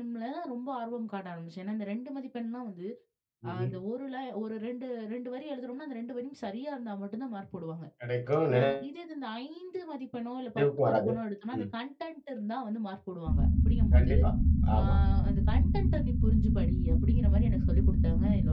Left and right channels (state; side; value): identical; both; correlation 1.00